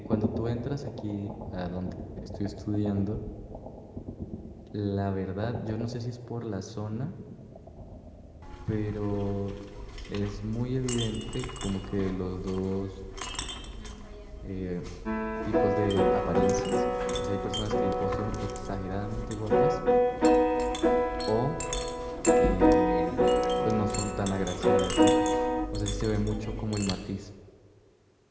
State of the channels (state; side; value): identical; both; correlation 1.00